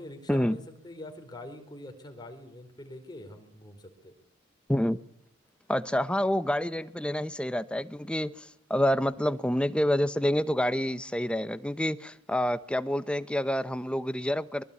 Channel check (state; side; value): normal; both; correlation 0.93